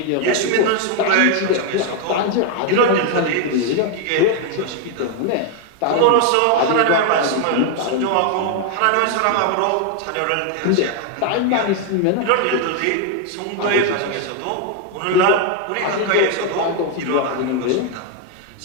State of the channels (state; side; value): different; both; correlation 0.01